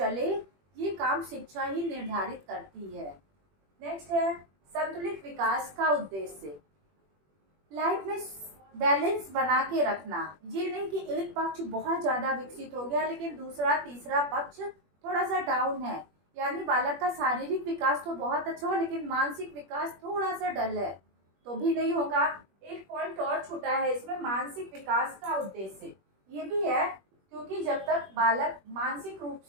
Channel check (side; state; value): left; late; 21 ms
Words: ये काम शिक्षा ही निर्धारित करती है। नेक्स्ट है संतुलित विकास का उद्देश्य। लाइफ में बैलेंस बना के रखना। ये नहीं कि एक पक्ष बहुत ज्यादा विकसित हो गया लेकिन दूसरा तीसरा पक्ष थोड़ा सा डाउन है। यानी बालक का शारीरिक विकास तो बहुत अच्छा हो लेकिन मानसिक विकास थोड़ा सा डल है तो भी नहीं होगा। एक पॉइंट और छूटा है इसमें, मानसिक विकास का उद्देश्य ये भी है, क्योंकि जब तक बालक मानसिक रूप